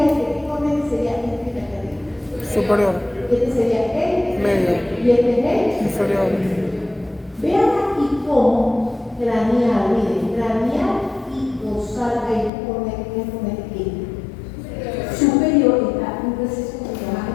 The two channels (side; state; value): right; drops out; at 12.5 s